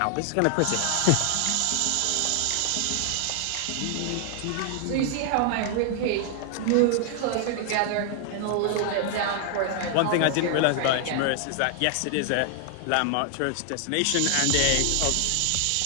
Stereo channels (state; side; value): different; both; correlation 0.00